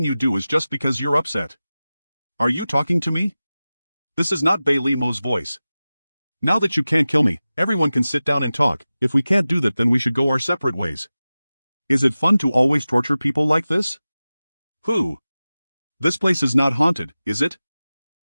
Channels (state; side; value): inverted; both; correlation -0.96